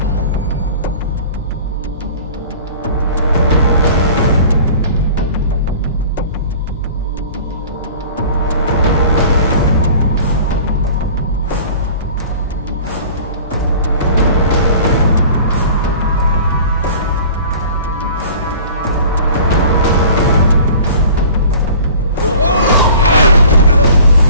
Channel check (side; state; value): both; inverted; correlation -0.45